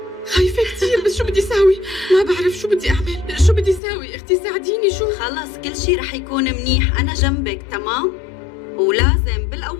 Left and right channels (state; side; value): drops out; right; at 3.8 s